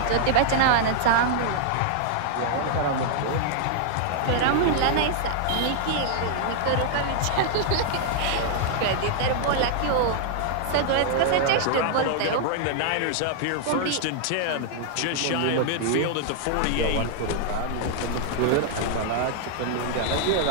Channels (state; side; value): different; both; correlation -0.01